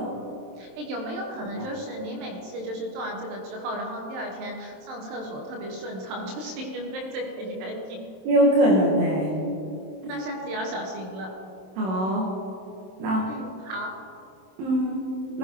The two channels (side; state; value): left; late; 27 ms